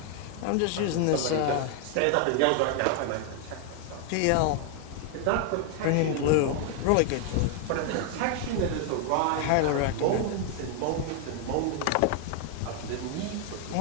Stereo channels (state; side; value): different; both; correlation 0.00